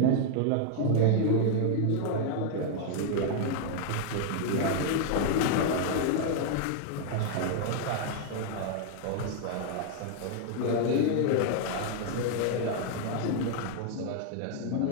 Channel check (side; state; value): both; different; correlation 0.00